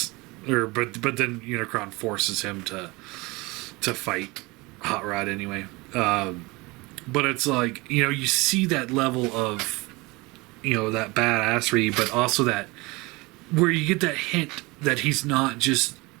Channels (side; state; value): left; quieter; 24.0 dB